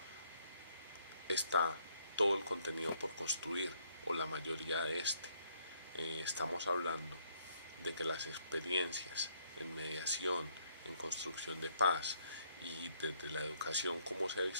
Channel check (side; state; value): both; inverted; correlation -0.68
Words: está todo el contenido por construir, o la mayoría de este. Estamos hablando de que las experiencias en mediación, en construcción de paz y desde la educación, como se ha